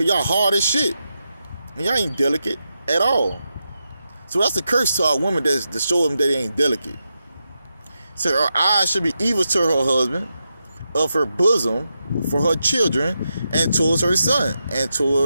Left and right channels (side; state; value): both; inverted; correlation -0.87